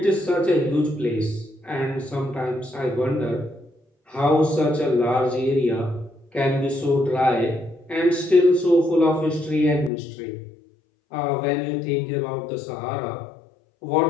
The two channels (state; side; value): drops out; right; at 9.9 s